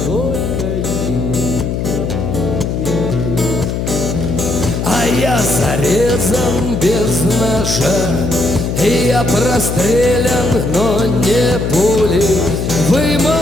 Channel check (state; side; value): noise; left; hum, 2 dB below the sound